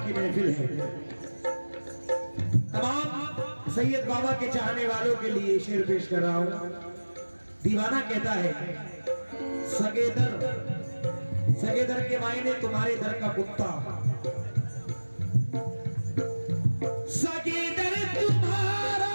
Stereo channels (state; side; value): inverted; both; correlation -1.00